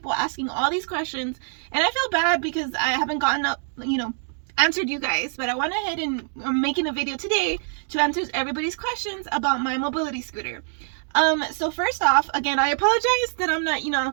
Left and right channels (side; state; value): left; silent; 56 dB below the other